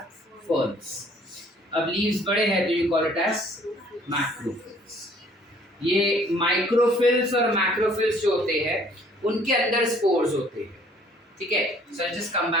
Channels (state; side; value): normal; both; correlation 0.58